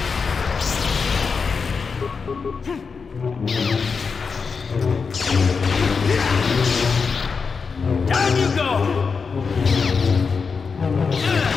Down you go!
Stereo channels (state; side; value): quieter; right; 5.2 dB